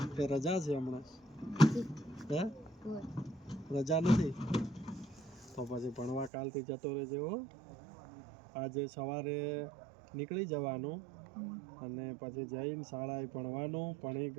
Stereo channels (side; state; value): left; drops out; at 6.3 s